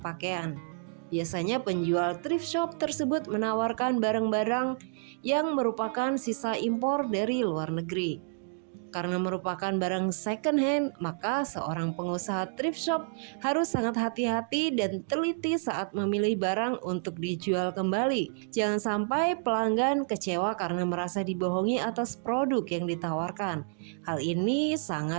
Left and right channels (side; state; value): left; silent; digital silence